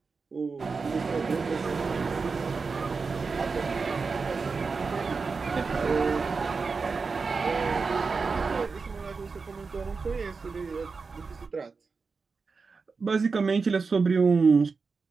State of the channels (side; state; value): left; quieter; 4.7 dB